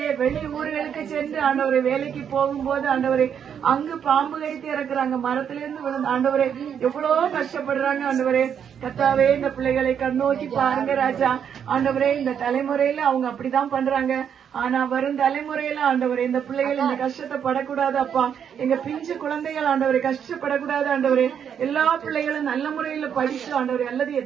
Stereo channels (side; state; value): left; quieter; 8.1 dB